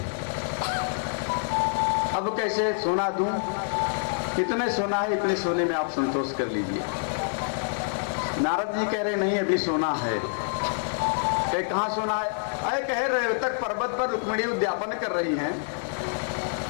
अब कैसे सोना दूं? इतने सोना है, इतने सोने में आप संतोष कर लीजिए। नारद जी कह रहे नहीं अभी सोना है। कहाँ सोना है? अरे कह रहे तक पर्वत पर रुक्मिणी उद्यापन कर रही हैं,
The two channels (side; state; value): right; silent; 60 dB below the other